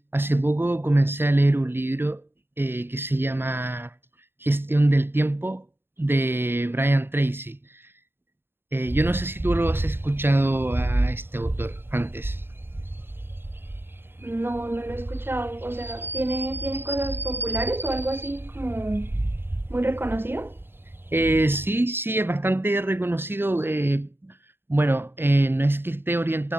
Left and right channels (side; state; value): left; late; 0.11 ms